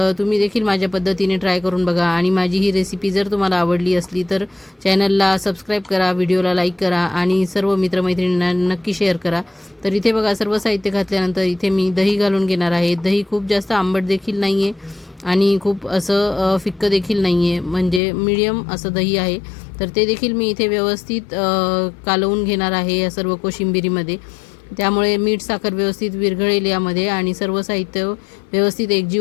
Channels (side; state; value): right; drops out; at 18.0 s